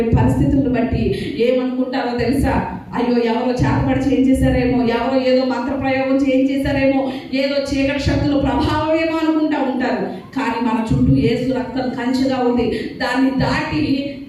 పరిస్థితులను బట్టి ఏమనుకుంటారో తెలుసా, అయ్యో ఎవరో చేతబడి చేయించేశారేమో, ఎవరో ఏదో మంత్ర ప్రయోగం చేయించేశారేమో, ఏదో చీకటి శక్తుల ప్రభావం ఏమో అనుకుంటా ఉంటారు. కానీ మన చుట్టూ యేసు రక్తం కంచెగా ఉంది. దాన్ని దాటి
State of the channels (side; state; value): both; identical; correlation 1.00